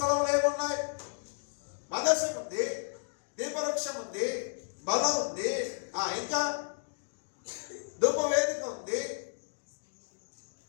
ఏమున్నాయి? మందసం ఉంది, దీపవృక్షం ఉంది, బలం ఉంది, ఇంకా ధూపవేదిక ఉంది.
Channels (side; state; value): right; silent; digital silence